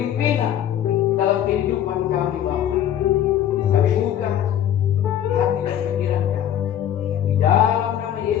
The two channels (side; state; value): right; quieter; 10.7 dB